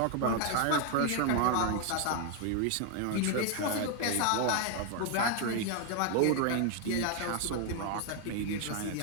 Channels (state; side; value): different; both; correlation 0.00